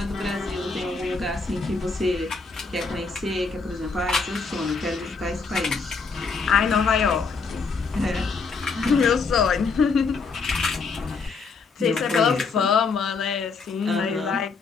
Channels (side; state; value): right; quieter; 4.7 dB